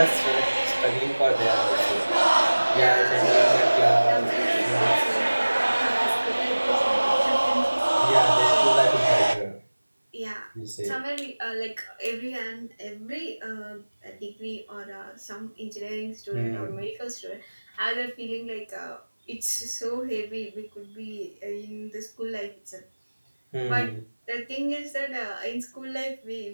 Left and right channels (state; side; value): inverted; both; correlation -1.00